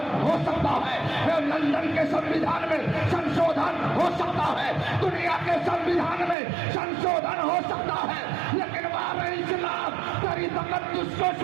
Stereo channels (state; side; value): drops out; left; at 6.4 s